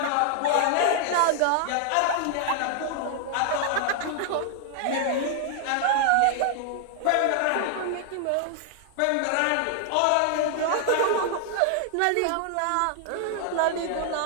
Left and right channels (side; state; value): both; different; correlation 0.00